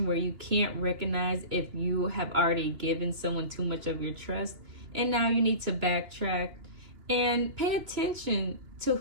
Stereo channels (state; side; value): late; left; 3.0 ms